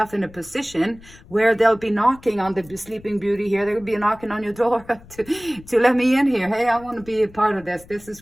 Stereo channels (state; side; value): noise; left; rumble, 22 dB below the sound